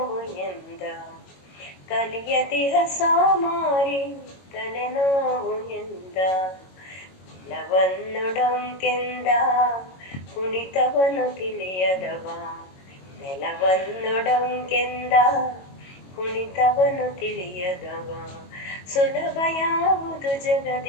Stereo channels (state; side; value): late; right; 22 ms